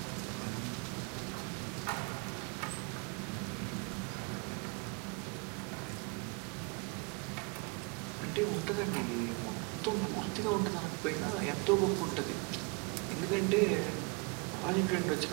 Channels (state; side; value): quieter; left; 32.2 dB